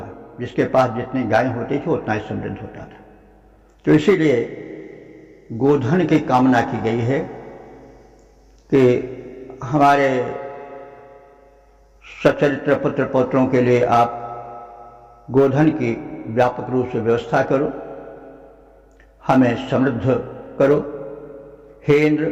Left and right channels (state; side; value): identical; both; correlation 1.00